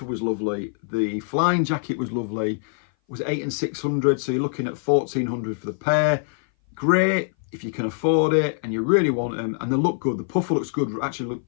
was lovely. The flying jacket was lovely. Was 8 and 600, so you're looking at 1,400 for the pair. Great if you can afford it and you really want them, and they look good. The puffer looks good. Actually,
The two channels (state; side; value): silent; right; 58 dB below the other